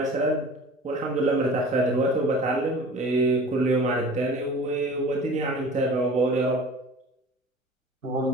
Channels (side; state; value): both; normal; correlation 0.42